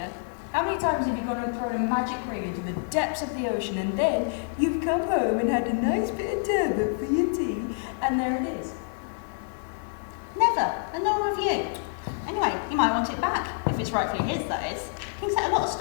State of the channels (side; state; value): right; silent; digital silence